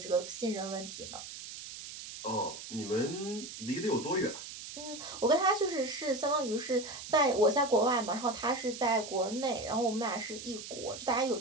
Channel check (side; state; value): right; noise; hiss, 11 dB below the sound